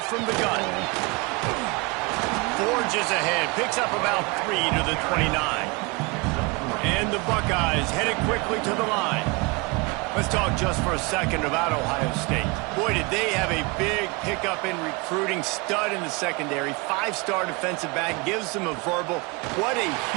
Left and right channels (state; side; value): quieter; left; 27.4 dB